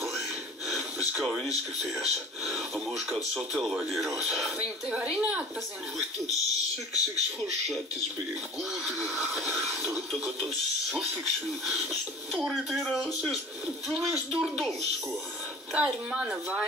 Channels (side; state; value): both; normal; correlation 0.42